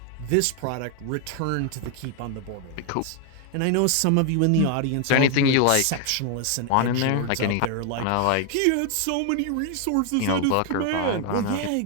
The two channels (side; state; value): both; different; correlation 0.00